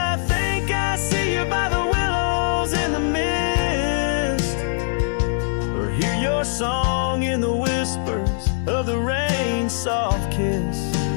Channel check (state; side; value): silent; right; digital silence